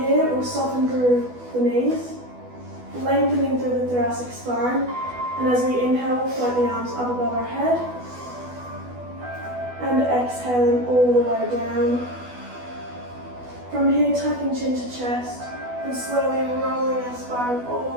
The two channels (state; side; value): late; left; 12 ms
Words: here, we'll soften through the knees, lengthening through the thoracic spine. And as we inhale, we'll float the arms up above our head. And exhaling all the way down. From here, tucking chin to chest and slowly rolling our spine